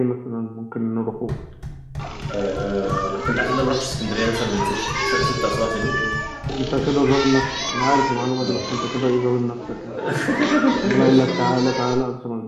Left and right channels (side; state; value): both; identical; correlation 1.00